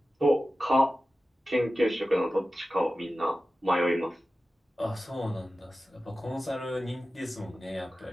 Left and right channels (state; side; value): normal; both; correlation 0.94